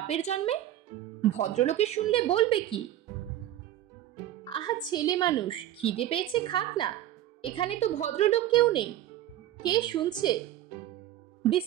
জন্মে? ভদ্রলোকে শুনলে বলবে কি? আহা ছেলে মানুষ, খিদে পেয়েছে খাক না, এখানে তো ভদ্রলোক কেউ নেই। কে শুনছে?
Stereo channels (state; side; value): quieter; left; 13.1 dB